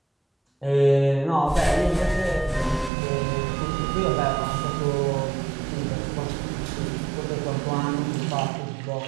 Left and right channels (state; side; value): drops out; left; at 2.9 s